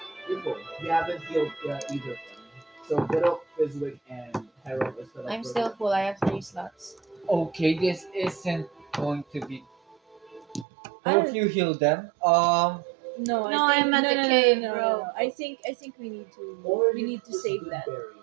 Before we haven't healed either of them. So Girl, Fizwick, and Harold is still up I'm for still full. I have 3 slots. Okay, this isn't going to be. Both you heal them. Um, No, No, I think, I'm at no, the no, no, cave, no, no, bro. no. I think we need to Or we you need to just save good that. berry.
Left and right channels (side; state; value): left; drops out; at 10.7 s